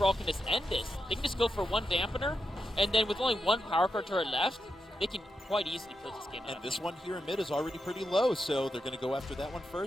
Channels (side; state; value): both; normal; correlation 0.86